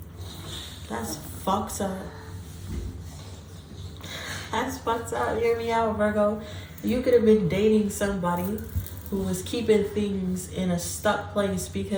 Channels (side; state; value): both; identical; correlation 1.00